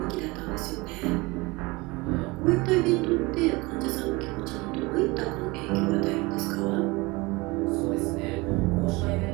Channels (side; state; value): left; quieter; 23.8 dB